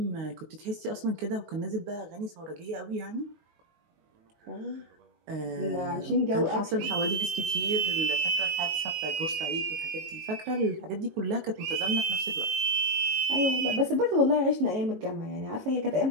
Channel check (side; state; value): left; late; 19 ms